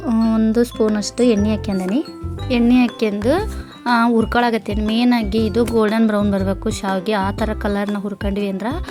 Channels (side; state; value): both; identical; correlation 1.00